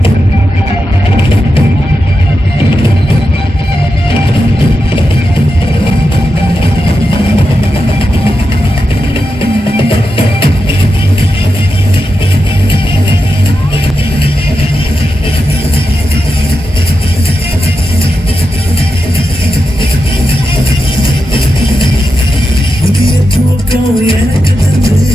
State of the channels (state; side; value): normal; both; correlation 0.89